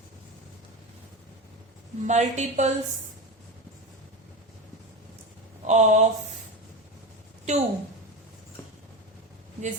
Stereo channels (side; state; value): both; normal; correlation 0.21